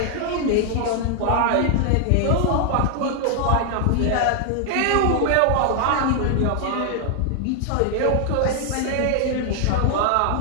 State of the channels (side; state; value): both; different; correlation 0.00